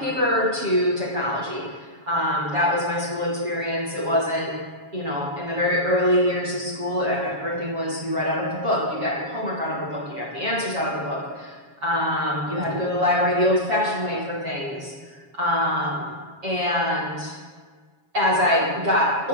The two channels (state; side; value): late; left; 7.2 ms